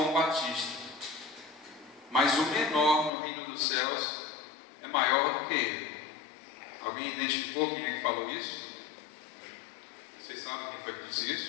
Batista, mas o menor no reino dos céus é maior do que ele. Alguém identificou quem é que falou isso? Vocês sabem quem foi que disse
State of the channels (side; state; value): right; drops out; at 3.1 s